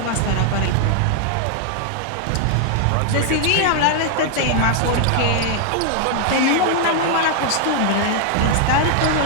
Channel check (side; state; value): both; different; correlation 0.00